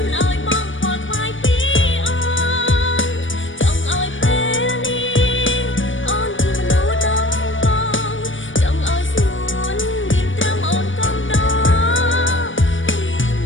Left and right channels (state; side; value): late; right; 0.56 ms